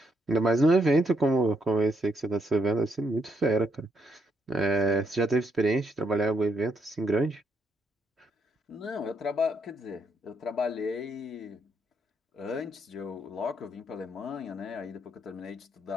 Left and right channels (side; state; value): both; normal; correlation 0.76